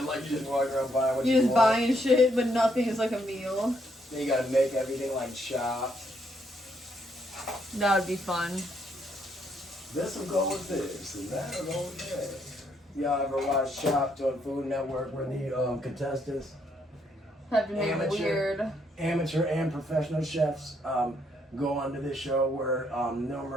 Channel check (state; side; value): normal; both; correlation 0.73